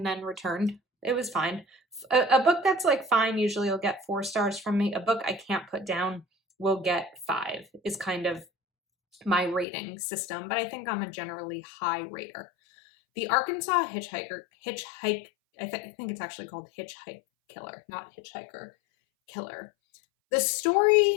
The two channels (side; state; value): right; drops out; at 9.7 s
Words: then returned. It was fine. A book that's like fine usually will get 4 stars from me. A book I can't put down will get 5 is kind of my rating system, but I think I'm a generally high rater. The Arkansas Hitchhike, I think it's actually called Hitchhike Killer, not Hitchhiker Killer. The